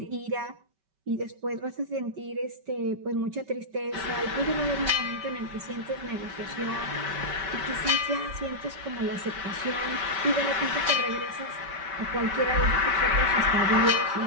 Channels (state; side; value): late; left; 5.2 ms